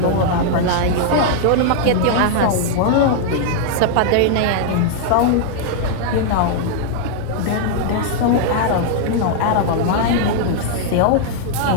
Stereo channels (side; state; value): both; different; correlation -0.01